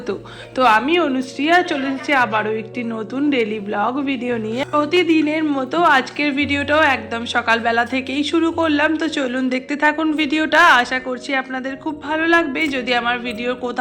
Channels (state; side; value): identical; both; correlation 1.00